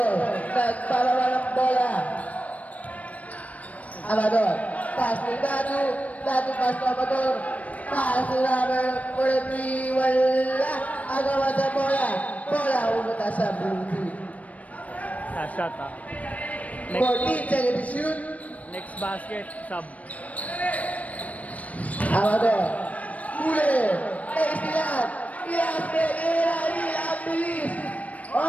Nagpalawa ng bola. Amador. Pass to Datu. Datu pass to Amador. Pass to number 43. Wala. Agawan sa bola. Bola pumunta sa blue team. Last shot, ha. 14 seconds to shoot. Next basket, sub. Amador. Huli. Istilan. Ilang bilis.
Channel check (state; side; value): late; right; 0.069 ms